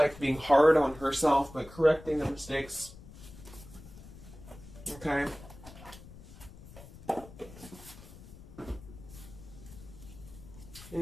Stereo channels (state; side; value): noise; left; rumble, 17 dB below the sound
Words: being hard on herself, but correcting the mistakes. Okay?